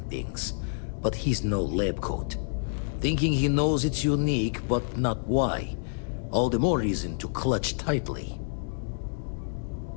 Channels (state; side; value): silent; right; digital silence